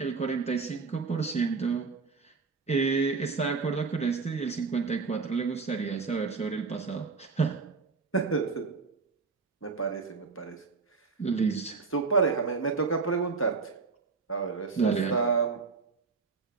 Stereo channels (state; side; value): quieter; left; 4.6 dB